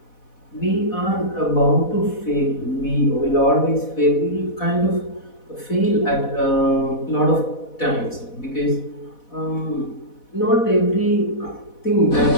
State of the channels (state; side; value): late; right; 4.1 ms